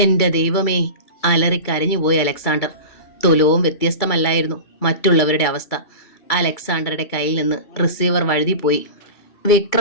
ദൈവമേ, അലറിക്കരഞ്ഞുപോയി അലക്സാണ്ടർ. തുലവും വ്യത്യസ്തമല്ലായിരുന്നു മറ്റുള്ളവരുടെ അവസ്ഥ. അലക്സാണ്ടറുടെ കയ്യിൽ നിന്ന് റിസീവർ വഴുതിപ്പോയി.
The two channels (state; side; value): late; right; 2.3 ms